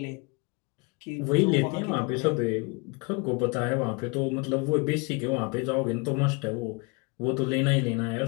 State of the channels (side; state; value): right; quieter; 29.2 dB